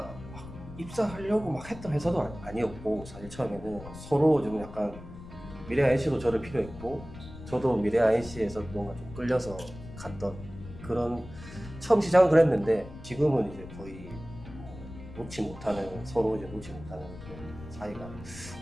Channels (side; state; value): left; noise; rumble, 14 dB below the sound